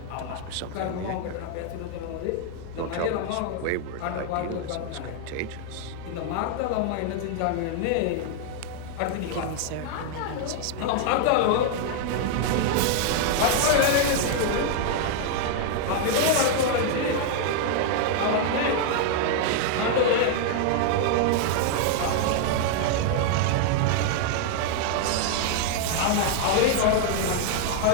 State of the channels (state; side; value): different; both; correlation 0.00